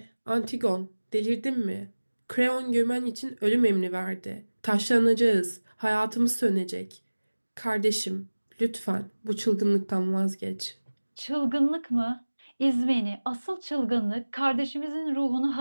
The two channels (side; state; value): both; inverted; correlation -1.00